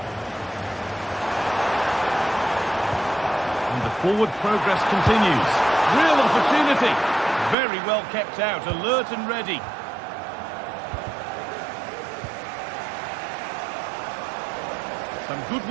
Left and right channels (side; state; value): left; drops out; at 7.6 s